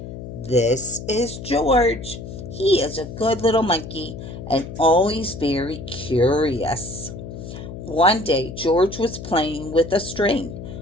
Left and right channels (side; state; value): left; noise; hum, 10 dB below the sound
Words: This is George. He is a good little monkey and always very curious. One day, George was playing with a string